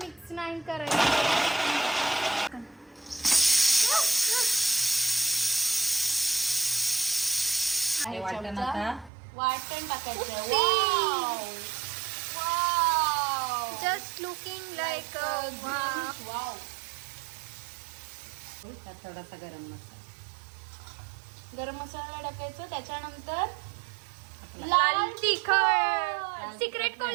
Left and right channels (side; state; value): left; drops out; at 9.1 s